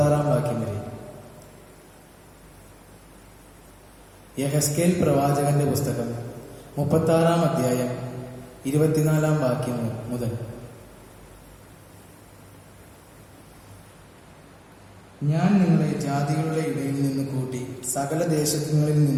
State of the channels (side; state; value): both; identical; correlation 1.00